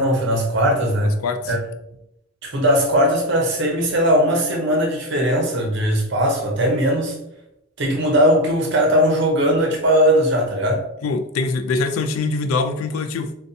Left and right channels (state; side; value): normal; both; correlation 0.12